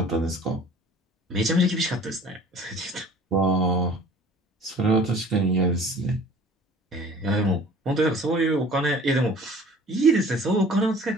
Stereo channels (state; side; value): normal; both; correlation 0.48